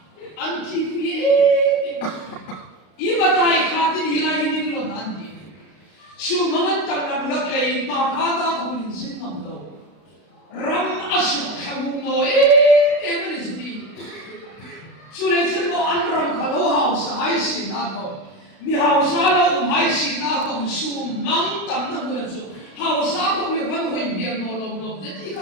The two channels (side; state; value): right; late; 32 ms